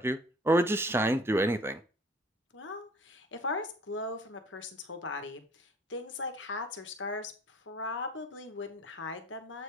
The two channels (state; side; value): normal; both; correlation 0.52